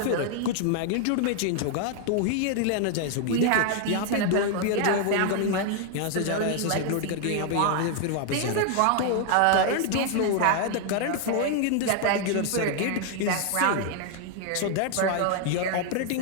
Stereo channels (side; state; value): both; different; correlation 0.00